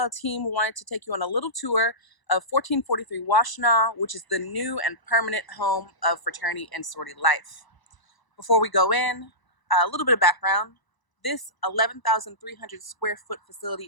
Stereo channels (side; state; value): right; late; 1.0 ms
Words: team wanted to take you on a little tour of 1443 Washtenaw, which is the new and permanent home of fraternity and sorority life. Before we go in, a little bit of background. This 11,300 square foot facility